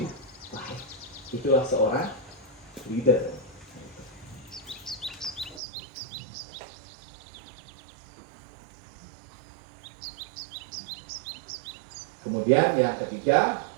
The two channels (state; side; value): drops out; left; at 5.6 s